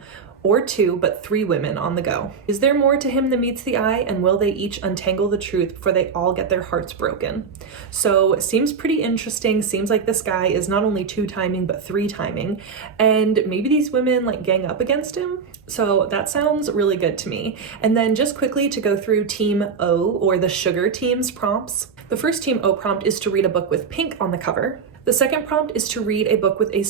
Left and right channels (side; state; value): left; quieter; 5.9 dB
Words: or 2, but 3 women on the go. Is there more to him than meets the eye, and will they each untangle the truth before they all get their hearts broken? So it seems pretty interesting. Seems like this guy is not only 2-timing, but 3-timing, and maybe these women like gang up against him? So that sounds really good to me. And then just quickly to go through Team O, or the sugar team's prompts. The first Team O prompt is to read a book with pink on the cover. The second prompt is to read a book with a